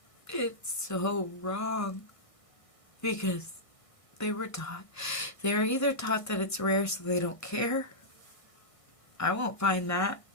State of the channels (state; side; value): late; right; 1.6 ms